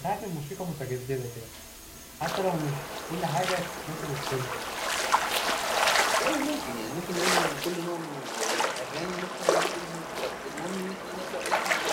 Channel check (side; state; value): both; identical; correlation 1.00